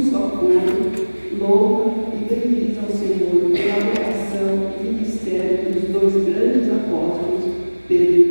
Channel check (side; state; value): both; inverted; correlation -1.00